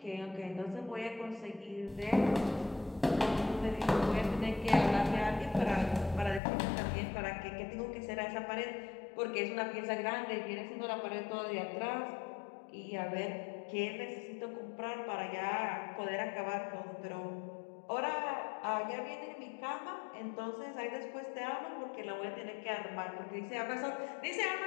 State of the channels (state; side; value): drops out; right; at 6.4 s